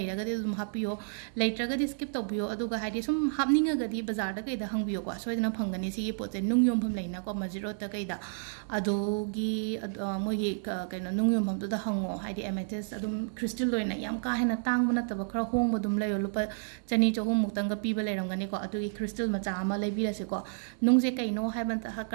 ragadi dum happy yo lai tragadi skip to biyo adu ga haidi sum hapninga gadi bazar da kai da hang biyo ko soidana phangani si gi pote nung yom pham laina ko majiro ta kai da adu gi mo gi keno nung yom pham da hango haidi amethyst adum crystal loina yam ka hena tang bana ta ba khara hong ba dum layo lupa chani cho hom muktang ga pi ba lai rangani ko adu gi crystal macha ama lai bi ra se ko nung je kai no ha ban ta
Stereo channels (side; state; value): left; silent; 57 dB below the other